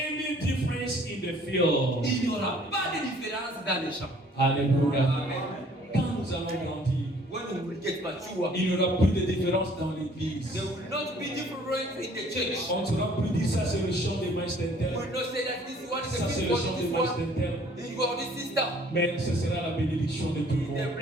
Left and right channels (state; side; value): normal; both; correlation 0.57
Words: difference in the field. Il n'y aura pas de différence dans les champs. Alléluia. Amen. Quand nous allons grandir, When we will get mature, il n'y aura plus de différence dans l'église. there will not be difference in the church. On ne saura plus dire ça c'est le chant des mains We d'inter. will not say that this one is Ça a c'est big le one, chant des this mains one d'inter. is for this sister. Mais ce sera la bénédiction de tout le The monde.